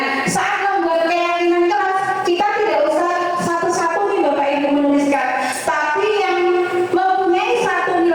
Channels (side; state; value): both; identical; correlation 1.00